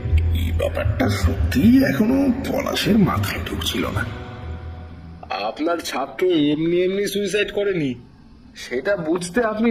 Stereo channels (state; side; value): identical; both; correlation 1.00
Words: এই ব্যাপারটা সত্যিই এখনো পলাশের মাথায় ঢুকছিল না। আপনার ছাত্র এমনি এমনি সুইসাইড করেনি, সেটা বুঝতে আপনি